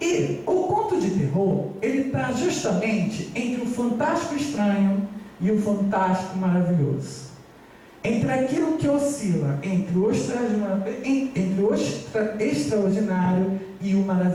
o conto de terror, ele está justamente entre o fantástico estranho e o fantástico maravilhoso. Entre aquilo que oscila entre o extraordinário e o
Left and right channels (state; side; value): identical; both; correlation 1.00